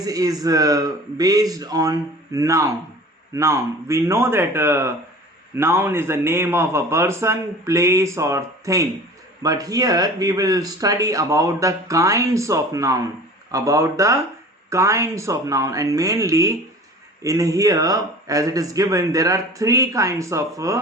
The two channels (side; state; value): both; normal; correlation 0.41